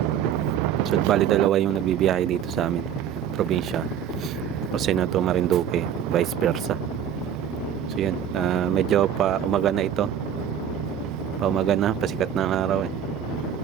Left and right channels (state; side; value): quieter; left; 9.1 dB